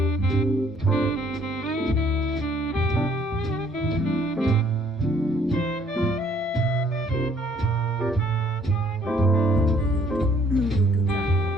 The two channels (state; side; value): normal; both; correlation 0.62